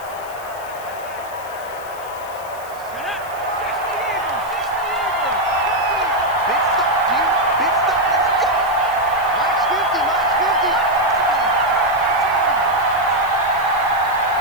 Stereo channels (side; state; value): left; noise; hiss, 19 dB below the sound